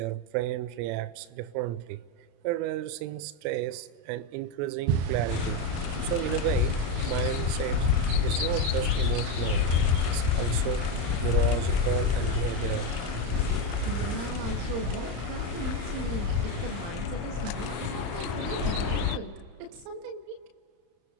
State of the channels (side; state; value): left; late; 34 ms